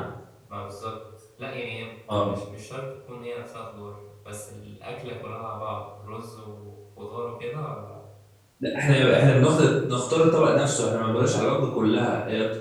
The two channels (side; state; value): both; identical; correlation 1.00